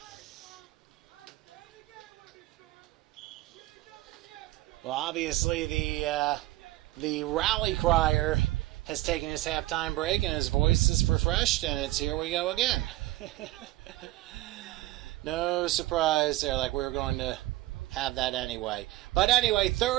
Well, obviously the rally crier has taken his halftime break and his voice is refreshed, and it's here we go again. No surprise there, like we were going to have that anyway. But anyway,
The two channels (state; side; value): quieter; left; 17.5 dB